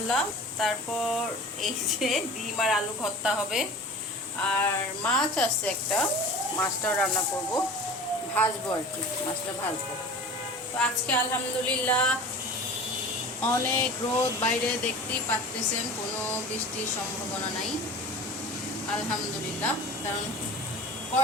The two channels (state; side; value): normal; both; correlation 0.38